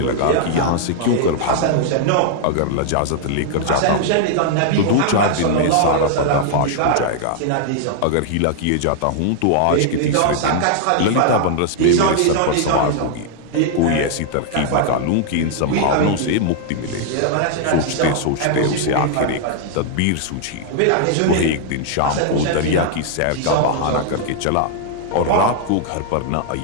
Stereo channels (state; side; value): different; both; correlation -0.01